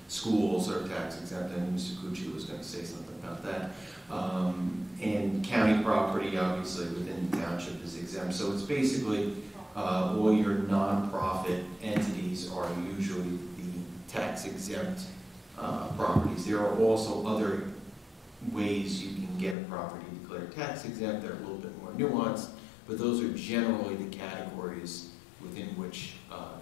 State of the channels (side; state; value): right; drops out; at 19.6 s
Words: Schools are tax exempt, and Mr. Cucci was going to say something about that. And county property, obviously, within the township is exempt. So it's basically all your nonprofit entities are usually the tax exempt properties. There are also other ways you can get a property declared tax exempt that are a little bit more nuanced, but those are generally the categories within which